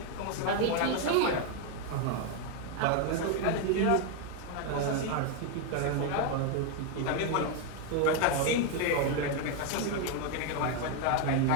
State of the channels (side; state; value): both; different; correlation 0.01